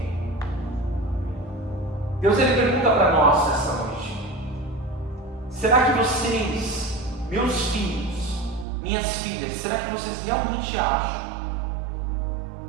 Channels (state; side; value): drops out; left; at 8.7 s